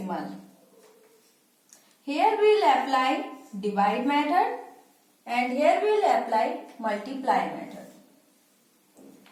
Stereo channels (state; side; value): identical; both; correlation 1.00